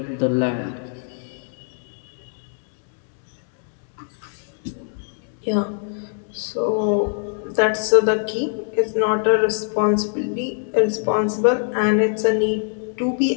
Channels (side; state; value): right; silent; digital silence